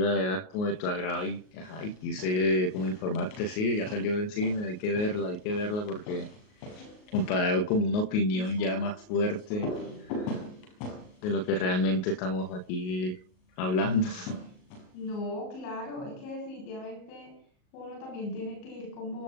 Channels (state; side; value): late; right; 38 ms